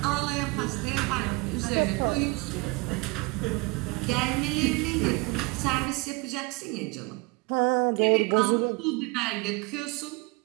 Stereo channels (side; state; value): left; quieter; 26.3 dB